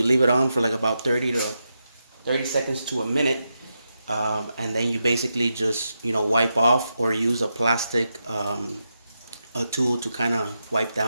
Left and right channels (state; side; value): inverted; both; correlation -0.87